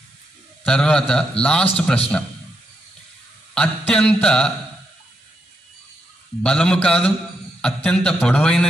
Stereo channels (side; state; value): both; normal; correlation 0.82